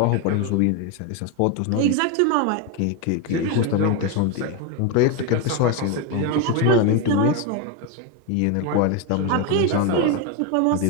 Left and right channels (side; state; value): both; different; correlation 0.02